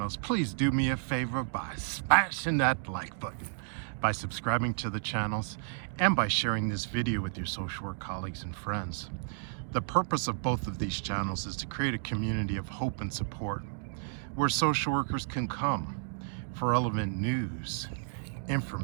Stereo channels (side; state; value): left; silent; digital silence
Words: please do me a favor by smashing that like button, by subscribing to the channels, and by sharing this video with your social work colleagues and friends. The purpose of both of these channels is to create a community of hope and support where social workers can come for relevant news,